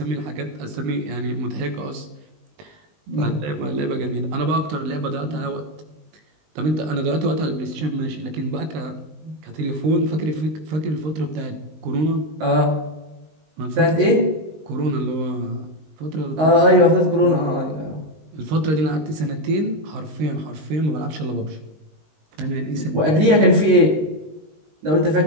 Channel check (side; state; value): left; late; 19 ms